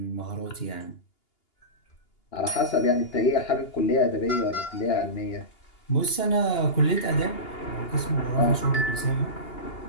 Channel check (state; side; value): late; right; 2.8 ms